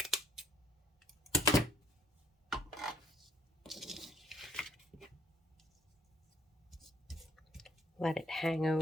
Let it hang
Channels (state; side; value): normal; both; correlation 0.64